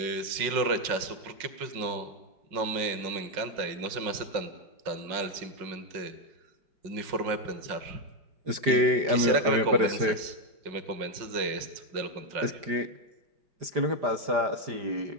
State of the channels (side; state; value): left; late; 5.4 ms